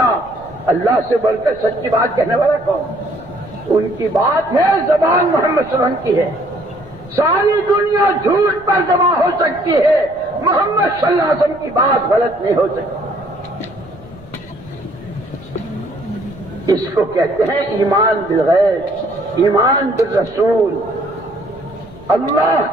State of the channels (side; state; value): right; noise; rumble, 25 dB below the sound